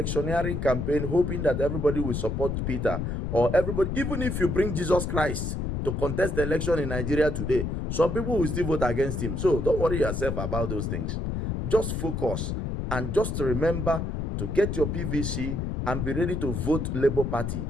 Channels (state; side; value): noise; left; rumble, 2 dB below the sound